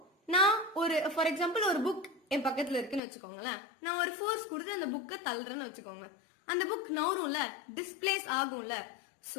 நான் ஒரு ஃபார் எக்ஸாம்பிள் ஒரு புக் என் பக்கத்துல இருக்குன்னு வச்சுக்கோங்களேன். நான் ஒரு ஃபோர்ஸ் கொடுத்து அந்த புக்கை தள்ளுறேன்னு வச்சுக்கோங்க. அந்த புக் நவரும்ல, டிஸ்பிளேஸ் ஆகும்ல.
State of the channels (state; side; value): drops out; right; at 3.0 s